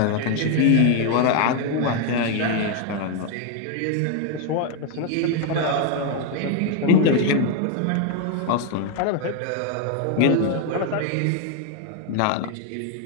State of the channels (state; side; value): different; both; correlation 0.01